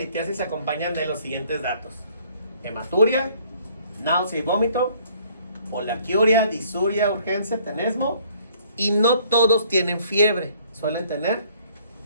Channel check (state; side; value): inverted; both; correlation -0.60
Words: se acompañan de los siguientes datos: hematuria, náusea y vómito, poliaquiuria, disuria, urgencia, tenesmo, y no todos tienen fiebre, suelen tener